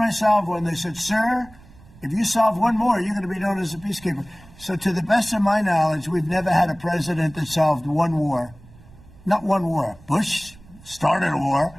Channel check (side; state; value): right; noise; rumble, 23 dB below the sound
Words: I solve one, they said, sir, if you solve one more, you're going to be known as a peacekeeper. So to the best of my knowledge, we've never had a president that solved one war. Not one war. Bush started a war.